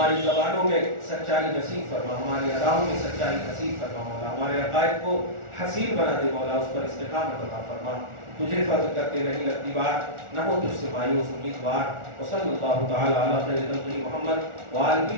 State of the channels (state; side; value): late; left; 1.4 ms